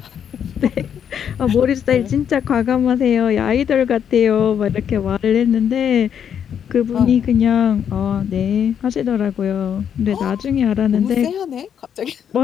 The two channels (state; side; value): quieter; right; 8.4 dB